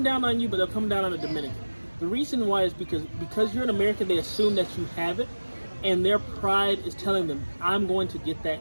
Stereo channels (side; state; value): both; inverted; correlation -1.00